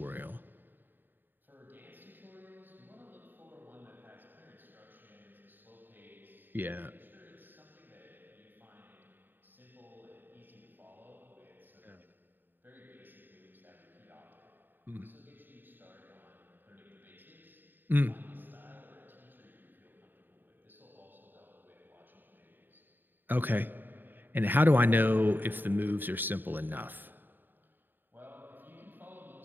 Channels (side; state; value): left; late; 0.092 ms